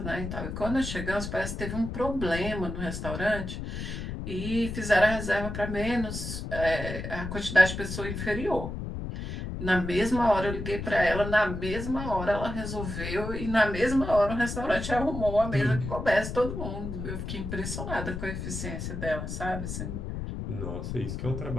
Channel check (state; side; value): noise; left; rumble, 6 dB below the sound